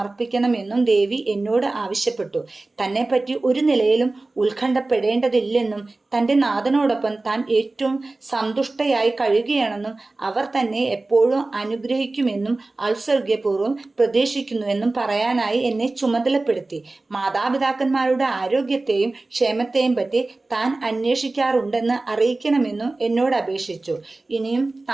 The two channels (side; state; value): left; quieter; 3.2 dB